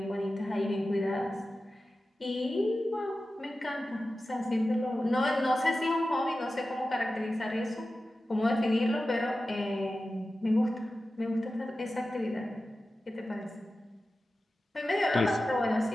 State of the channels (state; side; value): normal; both; correlation 0.94